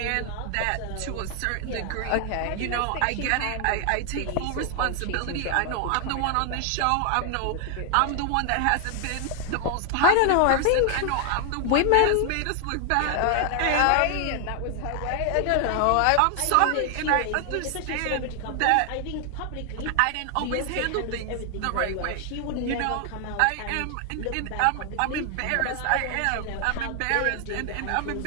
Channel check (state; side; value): different; both; correlation 0.00